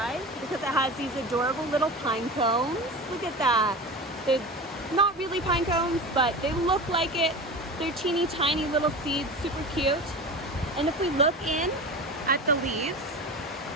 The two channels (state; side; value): normal; both; correlation 0.31